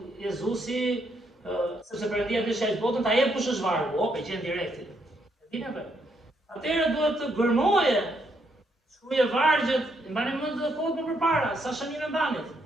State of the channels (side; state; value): both; normal; correlation 0.75